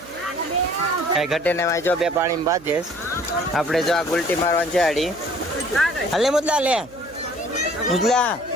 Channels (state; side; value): noise; right; hum, 22 dB below the sound